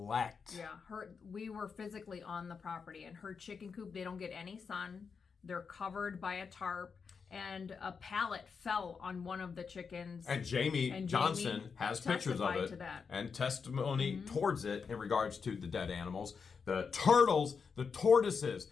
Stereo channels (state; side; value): quieter; right; 5.7 dB